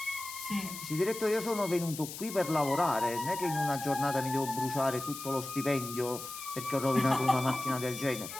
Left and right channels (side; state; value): left; noise; hiss, 10 dB below the sound